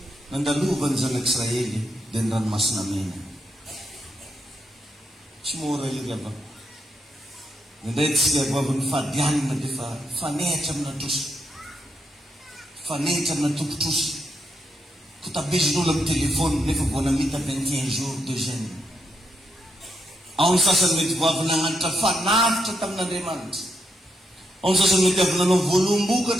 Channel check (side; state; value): both; normal; correlation 0.81